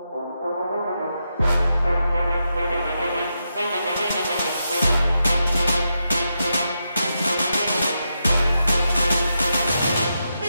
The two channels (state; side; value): inverted; both; correlation -0.85